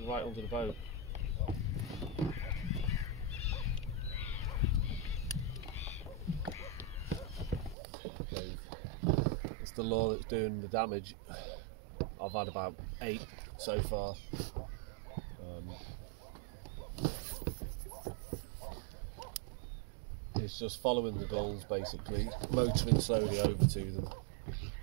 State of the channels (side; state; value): left; drops out; at 7.8 s